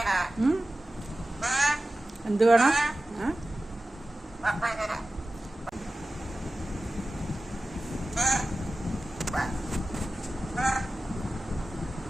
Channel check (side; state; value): both; normal; correlation 0.95